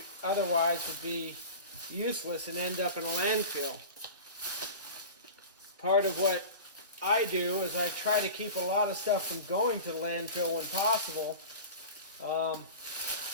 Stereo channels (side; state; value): both; inverted; correlation -0.33